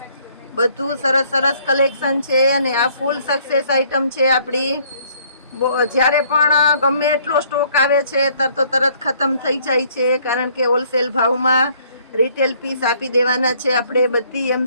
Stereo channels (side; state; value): both; inverted; correlation -0.62